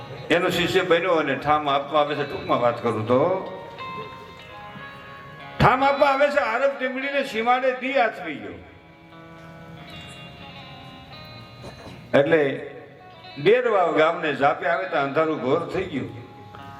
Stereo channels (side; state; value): both; identical; correlation 1.00